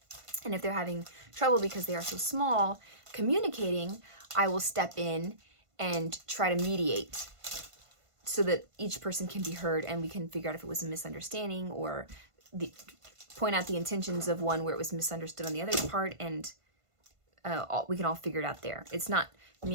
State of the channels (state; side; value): late; left; 1.5 ms